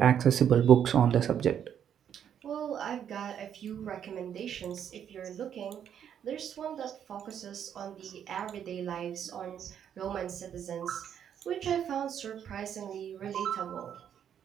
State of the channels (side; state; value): left; quieter; 9.0 dB